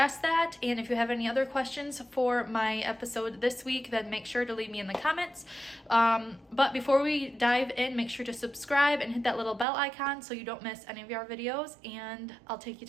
that. And if you have any other questions for my episode this week, then make sure to leave me in the comments. But before we dive in, make sure to subscribe and hit that little bell icon so you don't miss any of our videos, and I'll take you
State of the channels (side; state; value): left; drops out; at 9.7 s